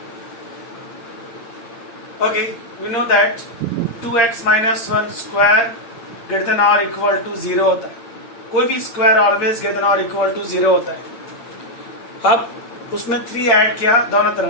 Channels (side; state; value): right; late; 8.7 ms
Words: Okay, we know that 2x minus 1 square greater than or equal to 0 होता है. कोई भी square always greater than और equal to 0 होता है. अब उसमें 3 add किया दोनों